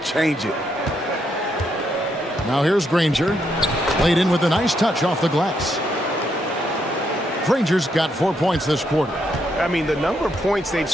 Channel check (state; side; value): normal; both; correlation 0.77